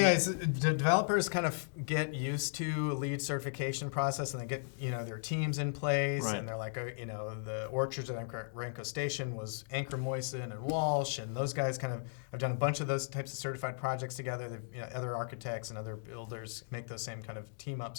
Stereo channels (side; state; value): right; silent; digital silence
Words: the developers kind of get used to a LEED certification process, and they get, their teams in place, Right. and they're like, the orchards at Orenco Station was Anchor Moyson and Walsh, and those guys kind of have done a bunch of those types of certified projects together. They've, other architects and other builders make those same kind of team